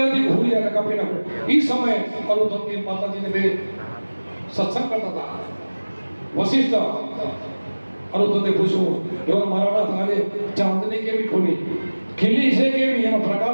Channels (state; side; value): inverted; both; correlation -1.00